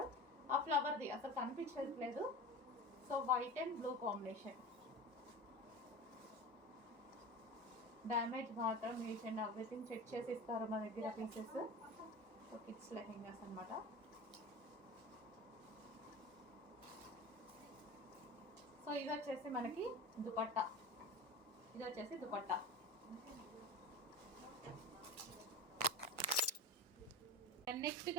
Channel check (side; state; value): both; normal; correlation 0.30